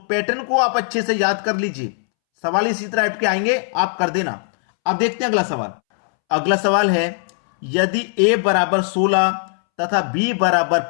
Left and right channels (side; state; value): right; silent; 66 dB below the other